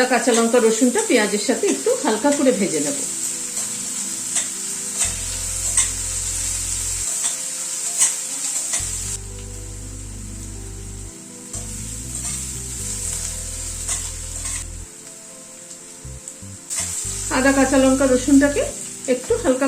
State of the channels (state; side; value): identical; both; correlation 1.00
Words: কাঁচা লঙ্কা রসুনটা পেঁয়াজের সাথে একটু হালকা করে ভেজে নেব। আদা কাঁচা লঙ্কা রসুনটাকে একটু হালকা